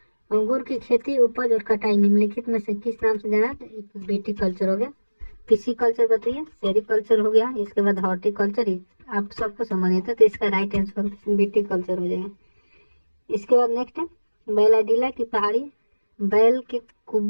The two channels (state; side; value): inverted; both; correlation -1.00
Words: अंगूर की खेती, उपज और कटाई निम्नलिखित में से किस नाम से जाना? तो बीटी कल्चर हो गया। पीसी कल्चर बताइए, सेरिकल्चर हो गया। इसके बाद हॉर्टिकल्चर आप सबको संबंधित है, तो इसका राइट आंसर बीटी कल्चर हो जाएगा। इसके बाद नेक्स्ट है बैलाडीला की पहाड़ी बैल के